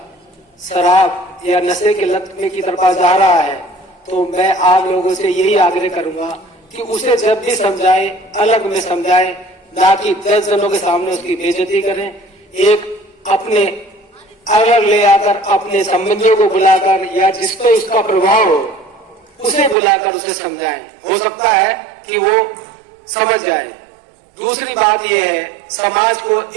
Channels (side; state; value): left; drops out; at 19.8 s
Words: शराब या नशे के लत में की तरफ जा रहा है तो मैं आप लोगों से यही आग्रह करूंगा कि उसे जब भी समझाए अलग में समझाए, ना कि 10 जनों के सामने उसकी बेइज्जती करें। एक अपने अलग ले आकर अपने संबंधियों को बुलाकर या जिस पे उसका प्रभाव हो उसे बुलाकर उसे समझाएं। हो सकता है कि वो समझ जाए। दूसरी बात यह है, समाज को